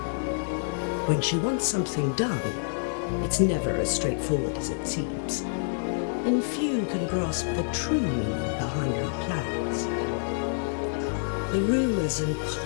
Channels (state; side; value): silent; right; digital silence